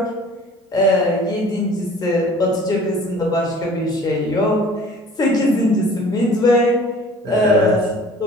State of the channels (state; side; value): normal; both; correlation 0.48